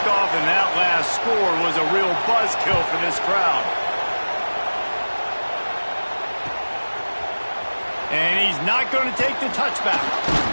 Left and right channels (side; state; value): both; inverted; correlation -1.00